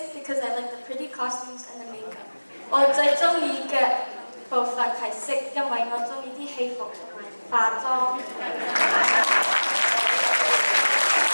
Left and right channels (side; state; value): both; inverted; correlation -1.00